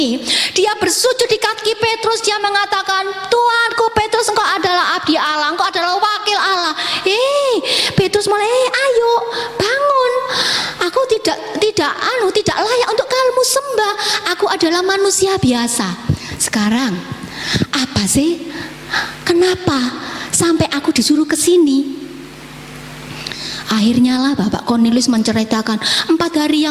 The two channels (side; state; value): both; identical; correlation 1.00